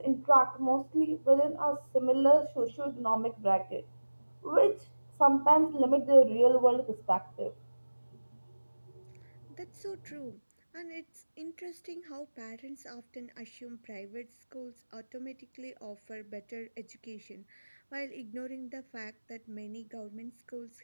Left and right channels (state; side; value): inverted; both; correlation -1.00